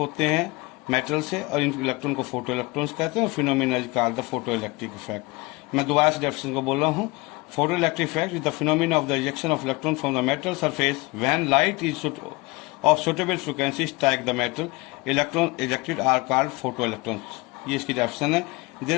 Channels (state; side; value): quieter; right; 24.4 dB